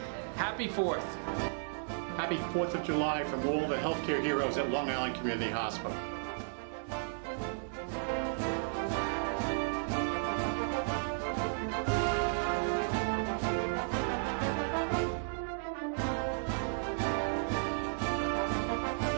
Happy 4th. Happy 4th of July from all the healthcare heroes at Long Island Community Hospital.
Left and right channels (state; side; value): silent; left; digital silence